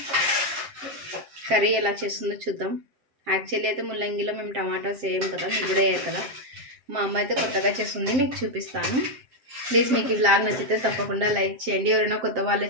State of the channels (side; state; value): left; late; 7.6 ms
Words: కర్రీ ఎలా చేస్తుందో చూద్దాం. యాక్చువల్లీ అయితే ముల్లంగిలో మేము టమాటోస్ వేయం కదా, మీరు కూడా వేయరు కదా. మా అమ్మ అయితే కొత్తగా చేస్తుంది, మీకు చూపిస్తాను. ప్లీజ్ మీకు ఈ వ్లాగ్ నచ్చితే తప్పకుండా లైక్ చేయండి. ఎవరైనా కొత్త వాళ్ళే